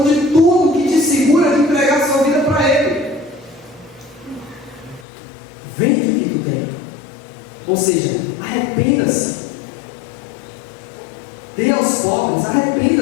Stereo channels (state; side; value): drops out; right; at 5.1 s